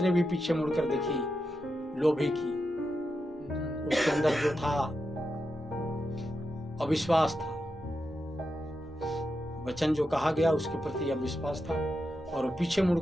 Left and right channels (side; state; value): both; normal; correlation 0.87